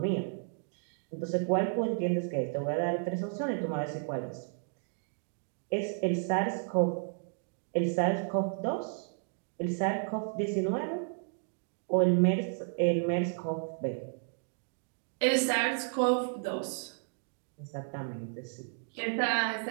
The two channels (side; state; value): left; silent; 56 dB below the other